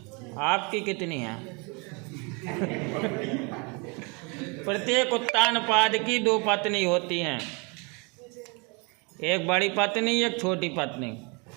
आपकी कितनी हैं? प्रत्येक उत्तानपाद की 2 पत्नी होती हैं, एक बड़ी पत्नी, एक छोटी पत्नी।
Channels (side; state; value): left; quieter; 31.2 dB